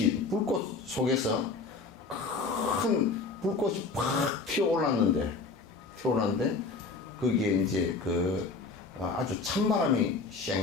속에서 큰 불꽃이 팍 튀어올랐는데, 거기에 이제 아주 찬바람이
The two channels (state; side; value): quieter; right; 4.1 dB